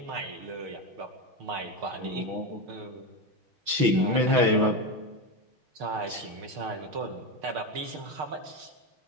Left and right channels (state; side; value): late; left; 6.1 ms